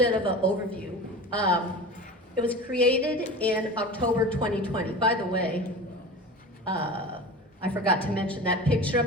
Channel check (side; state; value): both; normal; correlation 0.33